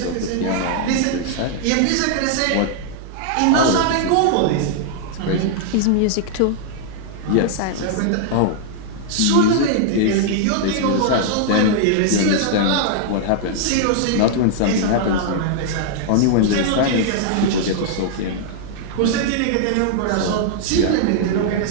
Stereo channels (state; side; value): different; both; correlation -0.01